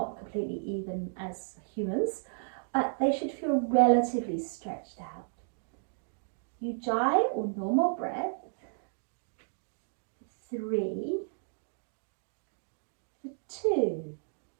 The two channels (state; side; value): silent; left; digital silence